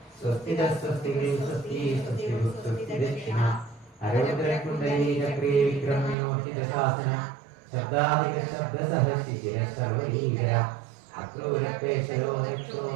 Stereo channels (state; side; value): drops out; left; at 6.2 s